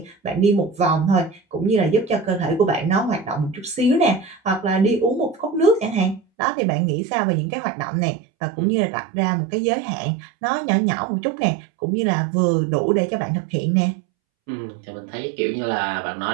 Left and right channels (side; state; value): left; drops out; at 6.2 s